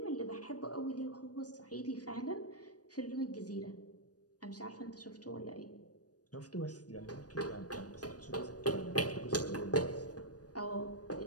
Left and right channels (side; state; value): right; late; 0.68 ms